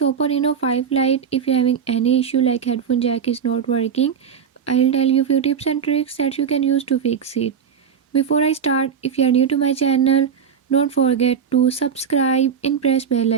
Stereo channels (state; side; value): quieter; left; 7.2 dB